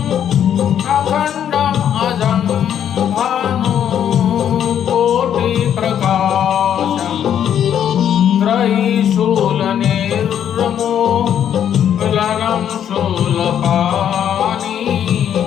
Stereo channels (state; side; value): quieter; right; 9.5 dB